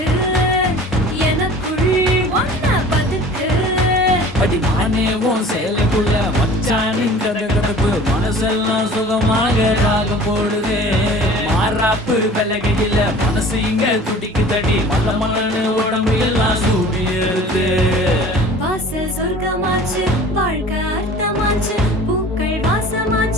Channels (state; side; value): normal; both; correlation 0.44